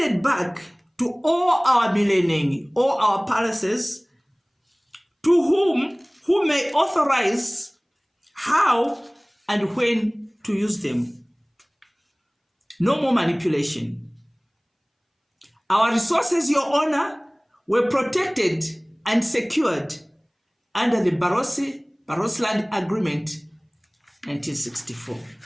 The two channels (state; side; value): identical; both; correlation 1.00